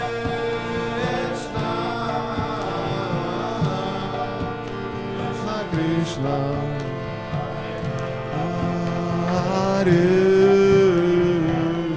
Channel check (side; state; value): both; identical; correlation 1.00